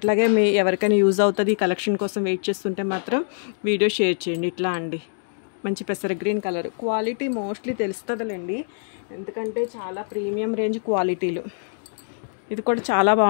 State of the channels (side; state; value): right; silent; digital silence